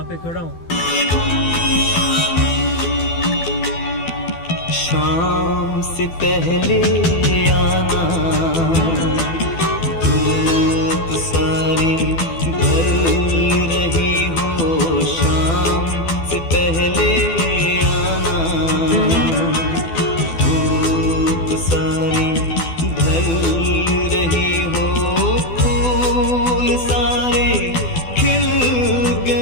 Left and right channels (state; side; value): late; right; 12 ms